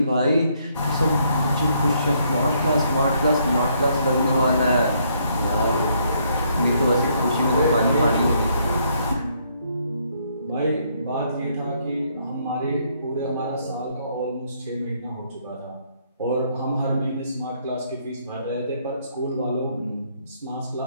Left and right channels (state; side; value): inverted; both; correlation -0.70